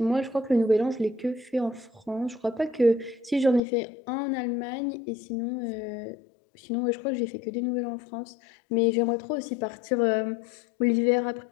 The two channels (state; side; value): drops out; right; at 3.6 s